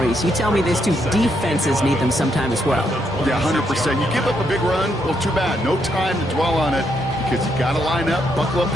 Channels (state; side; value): normal; both; correlation 0.77